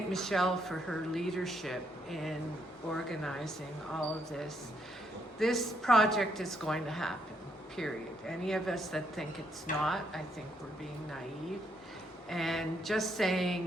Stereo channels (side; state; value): both; normal; correlation 0.74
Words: Michelle for her leadership in organizing all of this. This project is going to happen, period. Any of us that think it's not, I think we're being naive. And just